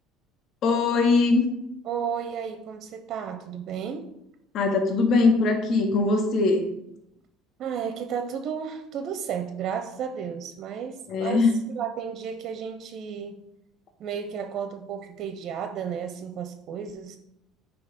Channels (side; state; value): both; normal; correlation 0.57